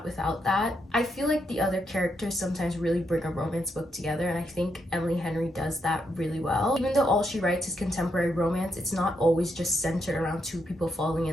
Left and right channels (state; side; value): normal; both; correlation 0.80